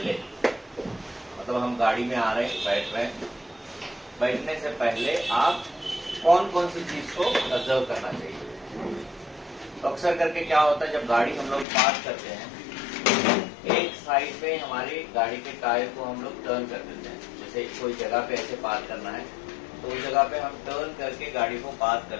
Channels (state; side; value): drops out; right; at 11.7 s